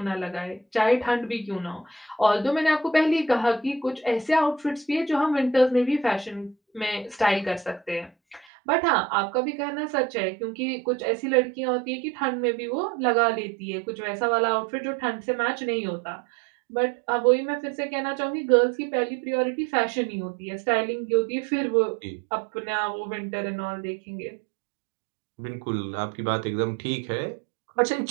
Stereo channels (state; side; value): drops out; left; at 8.5 s